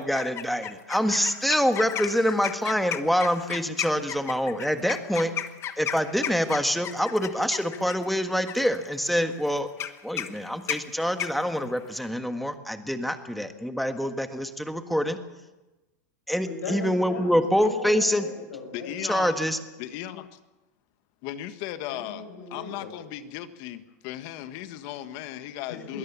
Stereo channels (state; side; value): normal; both; correlation 0.83